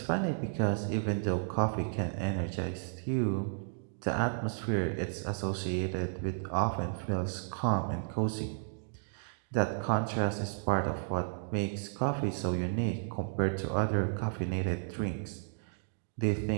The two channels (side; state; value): left; silent; digital silence